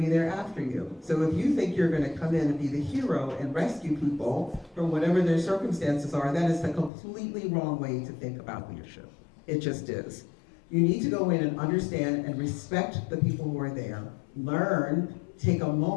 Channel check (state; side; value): drops out; right; at 6.9 s